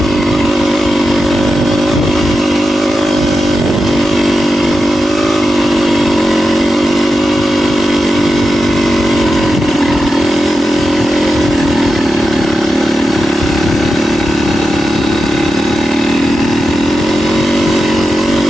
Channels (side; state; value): both; normal; correlation 0.90